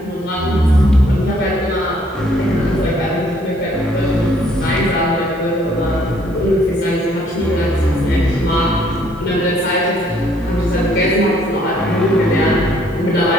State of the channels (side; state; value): both; normal; correlation 0.64